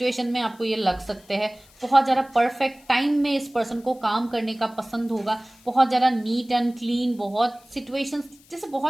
में आपको ये लग सकते हैं बहुत ज्यादा परफेक्ट टाइम में इस पर्सन को काम करने का पसंद होगा। बहुत ज्यादा नीट एंड क्लीन, बहुत सिचुएशंस जैसे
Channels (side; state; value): left; noise; hiss, 27 dB below the sound